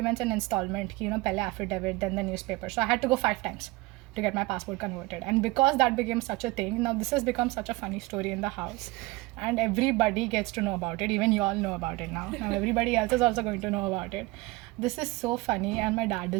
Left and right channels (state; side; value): quieter; left; 21.9 dB